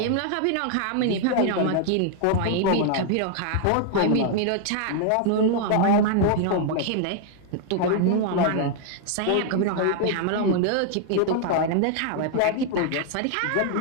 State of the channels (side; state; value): both; different; correlation 0.00